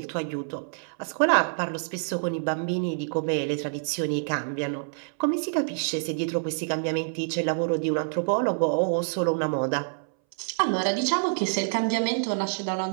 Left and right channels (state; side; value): silent; left; 60 dB below the other